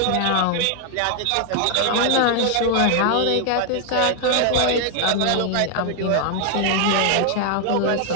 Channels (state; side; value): different; both; correlation 0.00